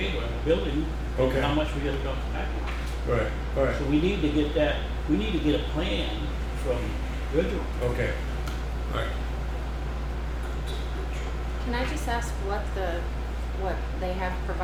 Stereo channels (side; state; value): both; identical; correlation 1.00